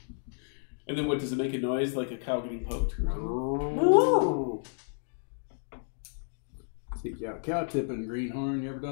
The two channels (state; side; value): silent; right; digital silence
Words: And then what, does it make a noise like a cow getting poked? Stick you out cow tipping, greenhorn. You ever